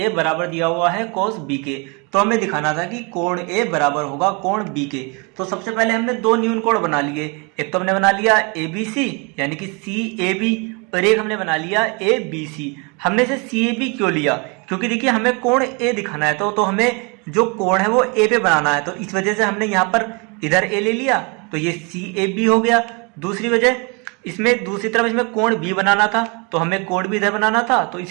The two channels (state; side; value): quieter; left; 31.4 dB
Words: बराबर दिया हुआ है कोस B के, तो हमें दिखाना था कि कोण A बराबर होगा कोण B के। तो सबसे पहले हमने दो न्यून कोण बना लिए, एक तो हमने बना लिया ABC यानी कि CAB, और एक हमने बना लिया ABC। हमने इसे CAB क्यों लिया, क्योंकि देखिए हमें कोण A दिखाना है, तो हमें जो कोण है वो A पे बनाना है, तो इस वजह से हमने यहाँ पर इधर A ले लिया, तो ये CAB हो गया। दूसरी वजह, इसमें दूसरी तरफ इसमें कोण B बनाना था, तो हमें कोण B इधर बनाना था, तो